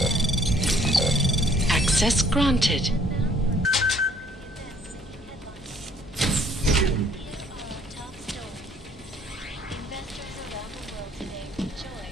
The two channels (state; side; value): normal; both; correlation 0.61